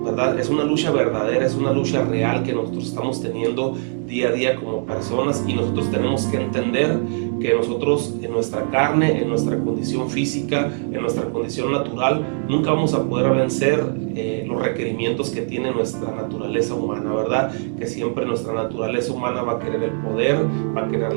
¿verdad? Es una lucha verdadera, es una lucha real que nosotros estamos teniendo día a día como personas, y nosotros tenemos que entender que nosotros en nuestra carne, en nuestra condición física, en nuestra condición natural, nunca vamos a poder vencer los requerimientos que tiene nuestra naturaleza humana, ¿verdad? Que siempre nuestra naturaleza humana va a querer el poder, va a querer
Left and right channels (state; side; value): silent; left; 61 dB below the other